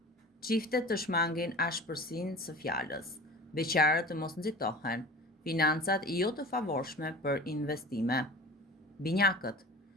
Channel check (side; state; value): both; normal; correlation 0.37